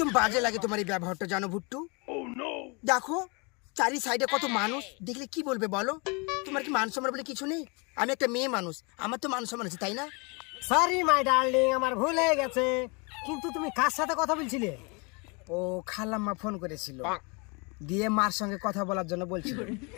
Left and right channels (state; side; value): quieter; right; 30.9 dB